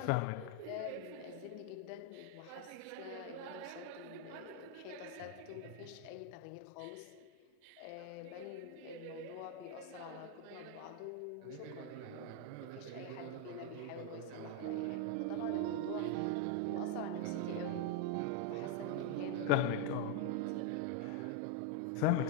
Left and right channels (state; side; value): different; both; correlation 0.01